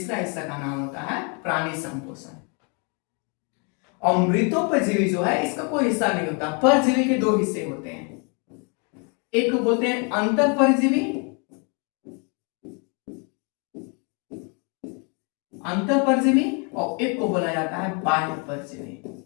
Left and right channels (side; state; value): right; quieter; 35.5 dB